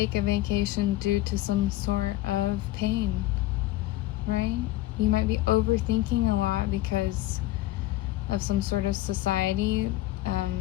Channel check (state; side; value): quieter; right; 16.1 dB